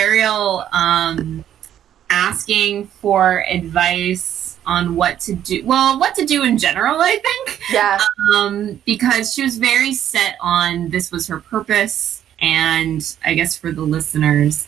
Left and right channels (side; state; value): left; quieter; 10.7 dB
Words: asking for advice on what to do. Well, what to do in general, I think. yeah. Because she was very set on this was her purpose. And I guess for the listeners,